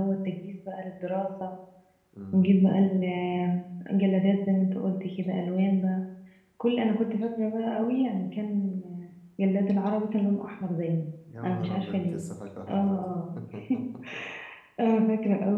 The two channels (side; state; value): both; identical; correlation 1.00